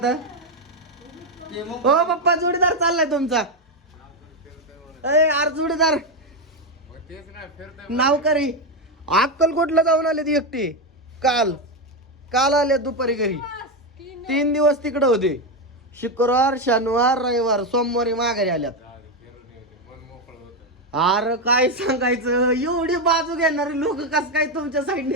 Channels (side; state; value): both; normal; correlation 0.08